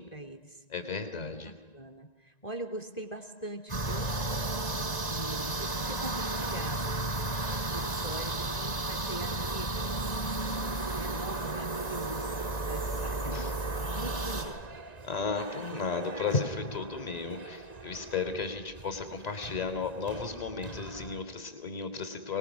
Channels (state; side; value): late; right; 1.9 ms